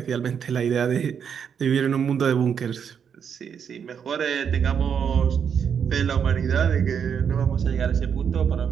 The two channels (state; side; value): quieter; left; 7.4 dB